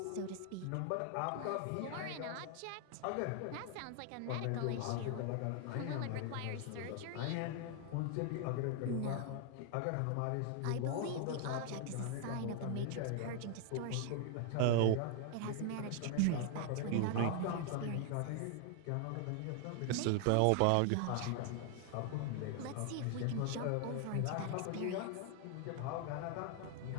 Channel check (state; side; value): different; both; correlation 0.00